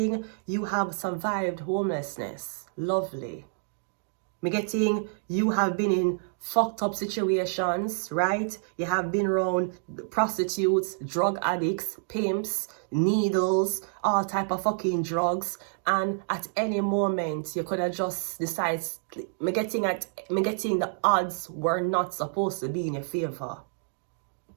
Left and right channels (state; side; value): silent; left; digital silence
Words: you have survived homelessness. Lovely. I'm getting you have been in fucked up situations, right? You have been around prostitutes, drug addicts, pimps, needles, all type of fucking drugs. And at any moment, you could have just decided, I'm getting the odds were not supposed to be in your favor.